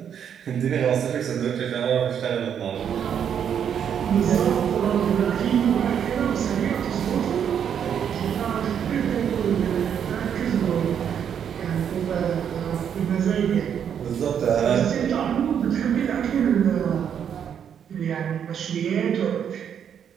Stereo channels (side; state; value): left; quieter; 8.4 dB